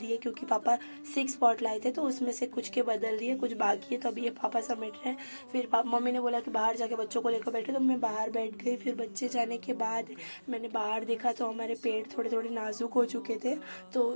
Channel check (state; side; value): inverted; both; correlation -1.00